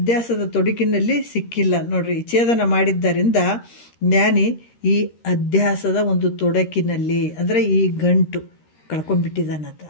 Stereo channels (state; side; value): late; right; 13 ms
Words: ತೊಡಕಿನಲ್ಲಿ ಸಿಕ್ಕಿಲ್ಲ ನೋಡ್ರಿ. ಛೇದನ ಮಾಡಿದ್ದರಿಂದ ಜ್ಞಾನಿ ಈ ಅಧ್ಯಾಸದ ಒಂದು ತೊಡಕಿನಲ್ಲಿ, ಅಂದರೆ ಈ ಗಂಟು ಕಳ್ಕೊಂಡ್ಬಿಟ್ಟಿದ್ದಾನಂತ,